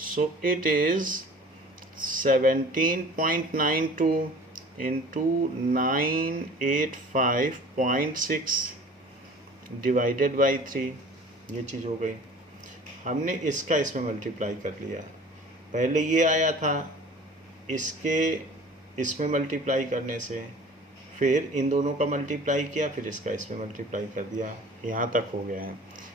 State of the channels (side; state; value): both; normal; correlation 0.45